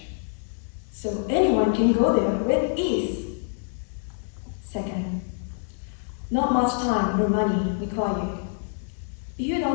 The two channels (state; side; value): silent; right; digital silence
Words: so anyone can go there with ease. Second, not much time or money required. If you